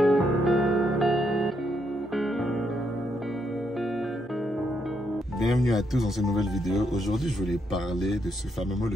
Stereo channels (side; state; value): both; normal; correlation 0.77